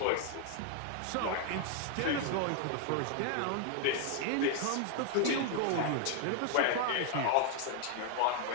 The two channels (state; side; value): different; both; correlation 0.00